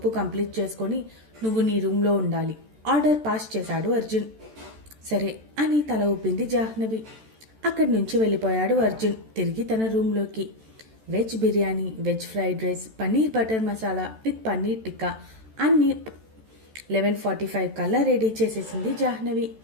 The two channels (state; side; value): late; left; 14 ms